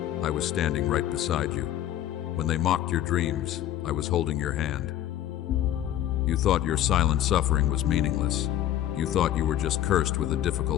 I was standing right beside you. When they mocked your dreams, I was holding your hand. You thought your silent suffering was meaningless. You thought you were just cursed with a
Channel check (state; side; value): quieter; right; 12.2 dB